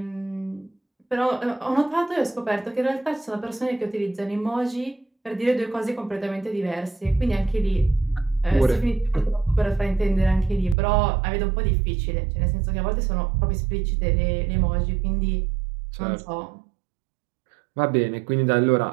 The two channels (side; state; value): left; drops out; at 10.8 s